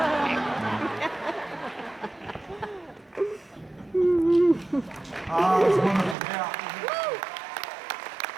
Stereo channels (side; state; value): left; drops out; at 6.2 s